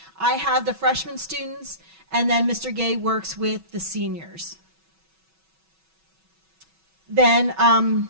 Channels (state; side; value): late; left; 6.1 ms